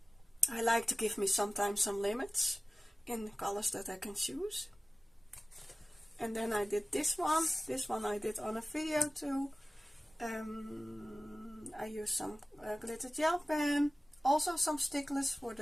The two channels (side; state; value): both; normal; correlation 0.97